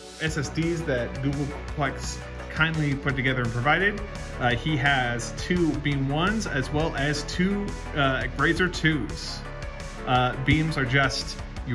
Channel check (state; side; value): identical; both; correlation 1.00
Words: SSDs that Googleplex kindly put together and provided, he has 2 beam 1s as well as 2 Grazer 2s. Beams are just,